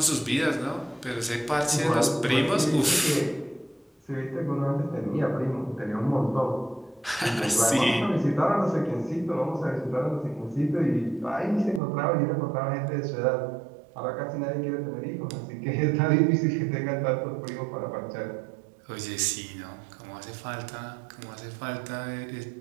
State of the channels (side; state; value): left; drops out; at 11.8 s